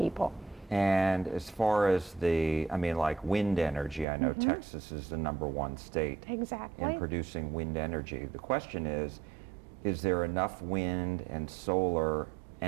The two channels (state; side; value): drops out; left; at 4.0 s